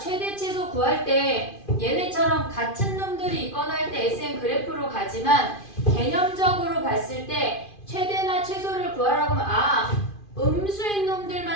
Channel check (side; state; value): right; late; 2.5 ms